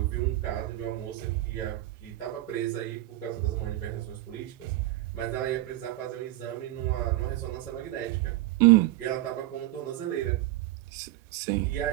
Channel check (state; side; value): quieter; left; 16.2 dB